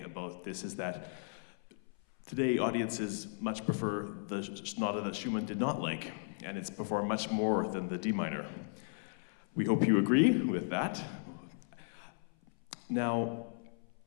about this is that today audiences much prefer the sonata that Schumann did not like, and it's performed much more than the D minor. We hope you agree with that. Now,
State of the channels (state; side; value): silent; right; 54 dB below the other